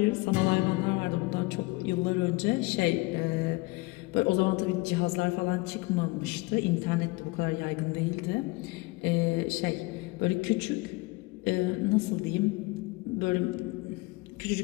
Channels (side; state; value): right; quieter; 23.9 dB